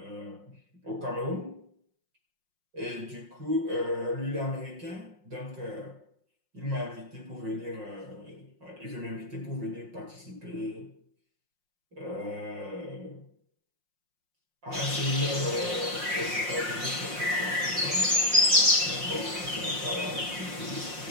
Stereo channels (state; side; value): late; left; 5.6 ms